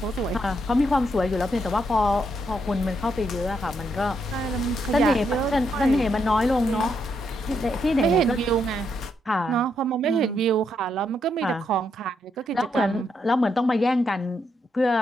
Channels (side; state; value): both; normal; correlation 0.78